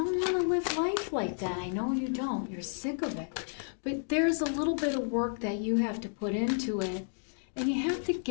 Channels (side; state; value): right; silent; digital silence